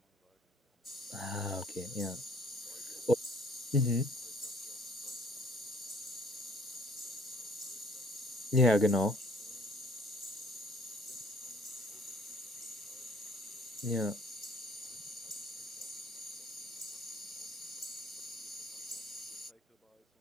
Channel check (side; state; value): both; normal; correlation 0.56